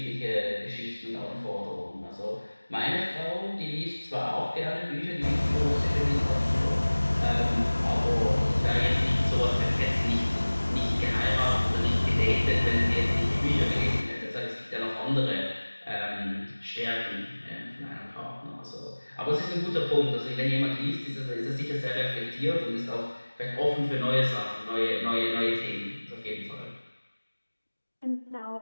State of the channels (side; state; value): both; inverted; correlation -1.00